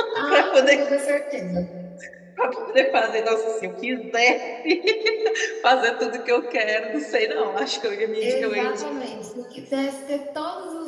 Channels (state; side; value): identical; both; correlation 1.00